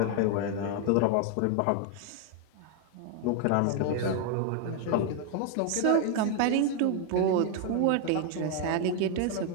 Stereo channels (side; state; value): both; different; correlation 0.00